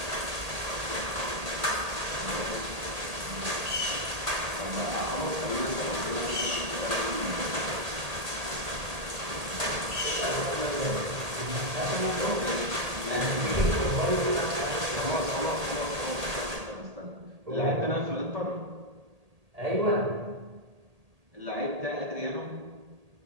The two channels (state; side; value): late; left; 1.8 ms